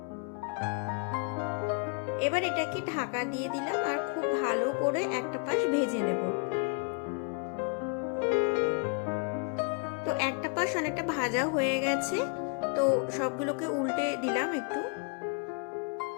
এবার এটাকে ঢাকা দিয়ে দিলাম আর খুব ভালো করে একটা পাশ ভেজে নেব। তো একটা পাশ অনেকটা ভাজা হয়ে গেছে, তো সবগুলোকে উল্টে দিলাম একটু।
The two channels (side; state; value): right; quieter; 37.4 dB